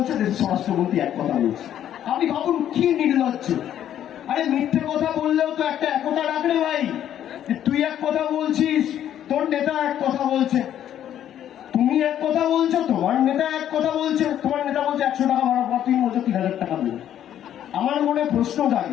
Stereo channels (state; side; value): quieter; right; 10.7 dB